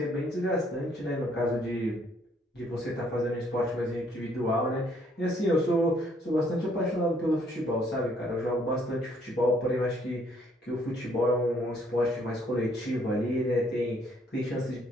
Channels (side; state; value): both; normal; correlation 0.66